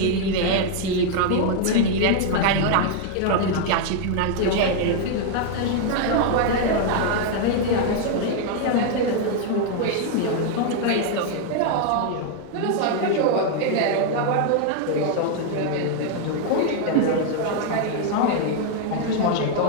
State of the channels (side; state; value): both; different; correlation 0.00